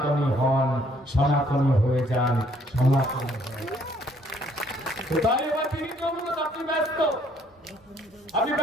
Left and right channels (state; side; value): normal; both; correlation 0.64